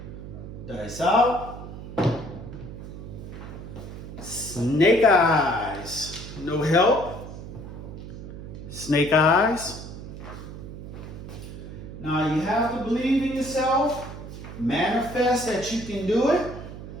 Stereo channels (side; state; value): right; noise; hum, 11 dB below the sound